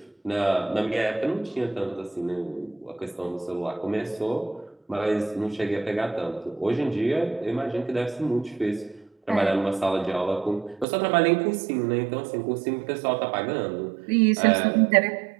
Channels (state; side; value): drops out; left; at 10.9 s